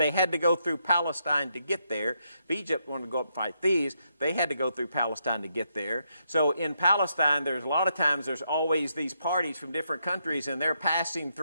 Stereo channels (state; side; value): inverted; both; correlation -0.79